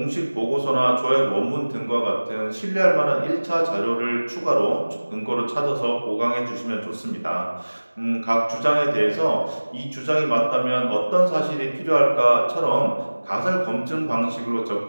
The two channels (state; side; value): inverted; both; correlation -1.00